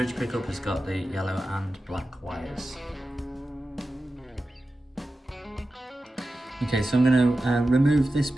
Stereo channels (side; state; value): both; normal; correlation 0.93